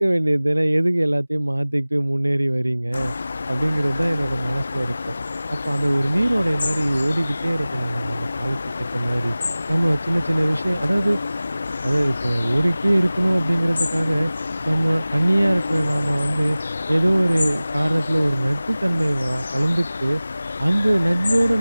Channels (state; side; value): inverted; both; correlation -0.98